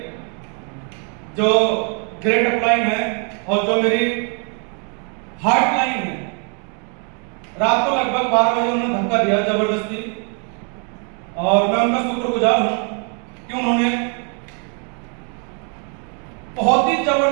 जो ग्रेट अपलाइन है और जो मेरी हार्ट लाइन है, रात को लगभग 12 बजे उन्होंने धक्का दिया जबरदस्ती, और मैं उनका शुक्रगुजार हूँ कि उन्होंने बहुत ही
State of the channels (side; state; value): left; quieter; 39.2 dB